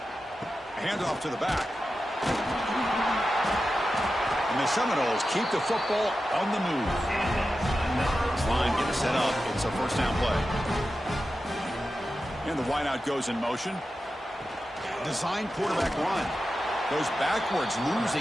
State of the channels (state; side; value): normal; both; correlation 0.92